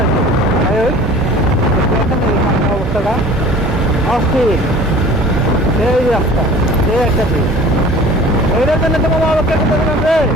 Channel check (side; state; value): both; normal; correlation 0.45